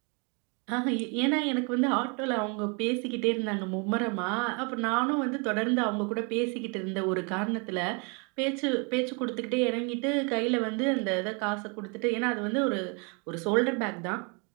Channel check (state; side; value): quieter; left; 34.2 dB